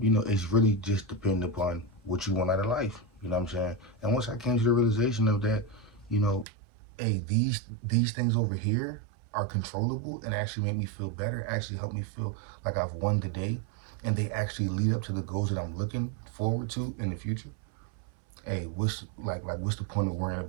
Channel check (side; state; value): left; drops out; at 6.5 s